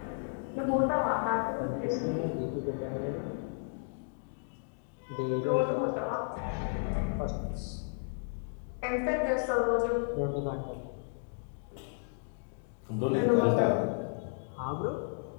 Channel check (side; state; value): right; silent; digital silence